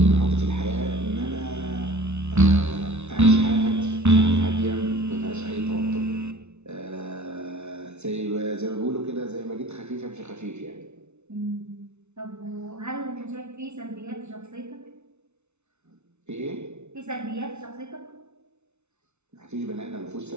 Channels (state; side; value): late; left; 0.82 ms